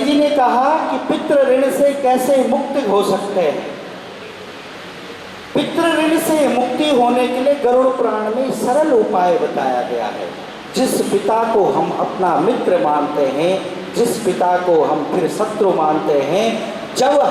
जी ने कहा कि पितृ ऋण से कैसे मुक्त हो सकते हैं। पितृ ऋण से मुक्ति होने के लिए गरुड़ पुराण में सरल उपाय बताया गया है। जिस पिता को हम अपना मित्र मानते हैं, जिस पिता को हम फिर शत्रु मानते हैं, जब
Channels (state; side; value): identical; both; correlation 1.00